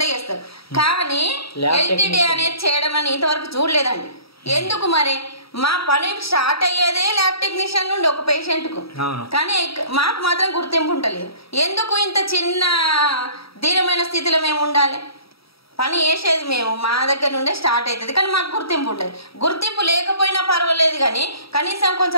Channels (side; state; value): right; late; 0.76 ms